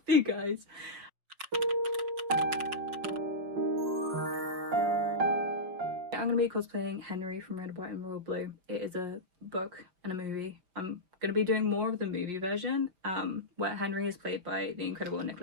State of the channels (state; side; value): late; left; 5.5 ms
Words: you guys. I'm going to be cosplaying Henry from Red, White and Royal Blue. It is a book and a movie. I'm going to be doing more of the movie version, where Henry is played by the incredible